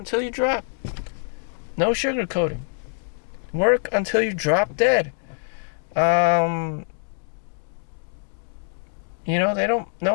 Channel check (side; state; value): right; silent; digital silence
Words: you drop. No sugarcoating. Work until you drop dead. They don't. No